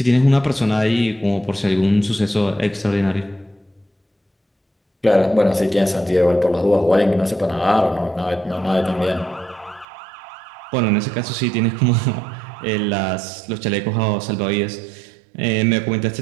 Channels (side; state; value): left; drops out; at 9.9 s